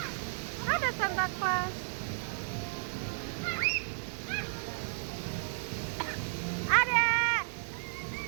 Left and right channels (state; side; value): silent; left; digital silence